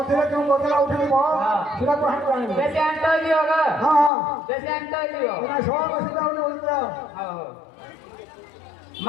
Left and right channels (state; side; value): drops out; right; at 4.1 s